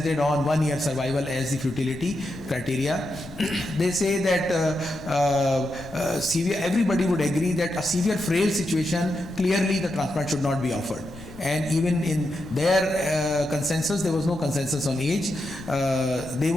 on 1 year survival as the futility criteria. They say that everybody would agree that a severe frail situation, clearly the transplant should not be offered. And even in their consensus, there was no consensus on age. They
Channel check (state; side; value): noise; left; rumble, 17 dB below the sound